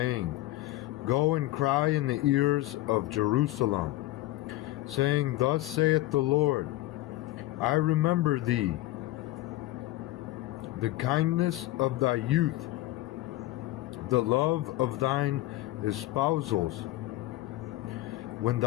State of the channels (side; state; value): right; quieter; 16.8 dB